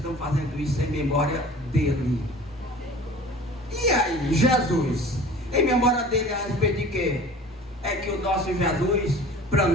fazendo isso em memória dele. E aí, Jesus, em memória dele a respeito de quê? É que o nosso Jesus, para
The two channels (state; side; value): normal; both; correlation 0.44